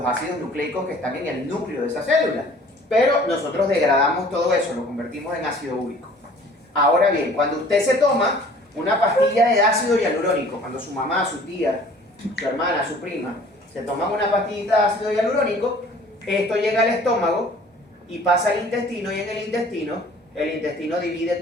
ácidos nucleicos que están en el núcleo de esa célula. Pero nosotros degradamos todo eso, lo convertimos en ácido úrico. Ahora bien, cuando usted se toma una pastilla de ácido hialurónico, cuando su mamá, su tía, su hermana, su prima, se toman una pastillita de ácido hialurónico, esto llega al estómago y pasa al intestino, y en el intestino divide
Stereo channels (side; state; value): both; normal; correlation 0.51